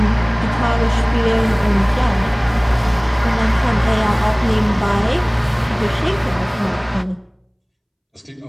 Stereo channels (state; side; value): identical; both; correlation 1.00